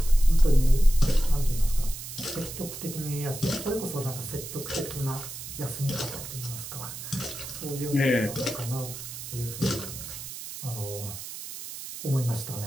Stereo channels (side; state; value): right; noise; hiss, 10 dB below the sound